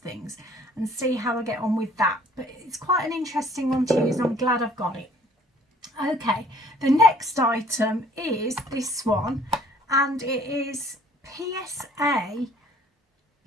and see how I get on with that. But it's quite an interesting one to use, and I'm glad I've got it. Okay, the next item is this one, and it is PSA.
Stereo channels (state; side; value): normal; both; correlation 0.57